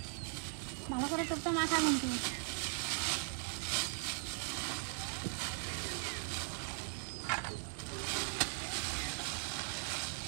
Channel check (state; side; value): silent; left; 51 dB below the other